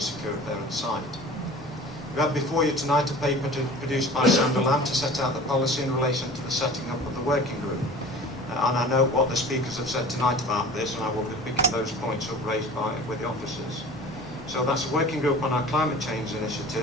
a parent site. We have before you tonight a paper produced by Sandra Lamb to set out the policy in relation to the setting up of the working group. And I note what the speakers have said tonight about this, and I will be picking those points up raised with the officers. So that's a working group on our climate change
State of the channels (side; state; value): both; normal; correlation 0.42